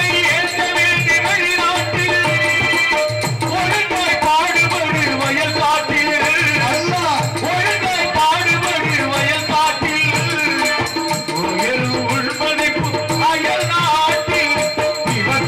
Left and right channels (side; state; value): both; identical; correlation 1.00